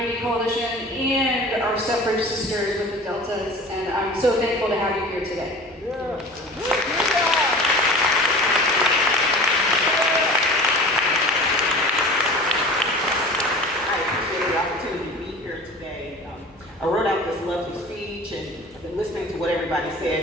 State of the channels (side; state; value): left; noise; hum, 29 dB below the sound